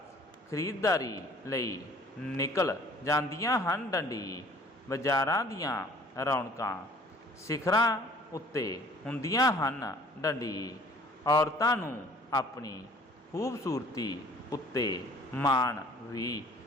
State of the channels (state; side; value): normal; both; correlation 0.53